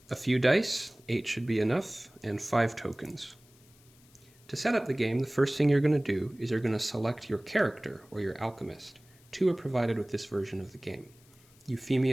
A few dice, 8 should be enough, and 5 tokens. To set up the game, the first thing you're going to do is you're going to select your character, or your alchemist. 2 are provided with this version of the game:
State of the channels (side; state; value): left; noise; hiss, 28 dB below the sound